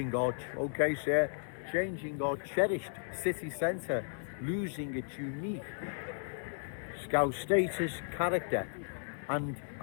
our cherished city centre, losing its unique Scout status, character and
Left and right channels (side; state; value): right; silent; digital silence